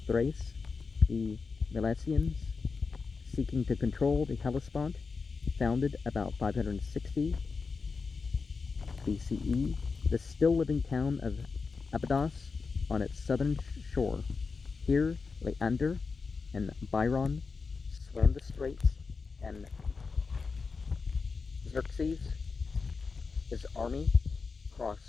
the Milesians, seeking to control the Hellespont, founded about 560 BCE, the still-living town of Abydos on its southern shore. Here, Leander and Byron swam the straits, and Xerxes, his army,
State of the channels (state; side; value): quieter; right; 4.7 dB